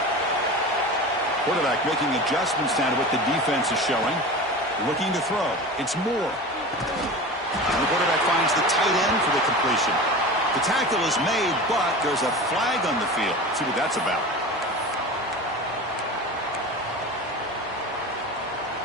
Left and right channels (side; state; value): both; normal; correlation 0.32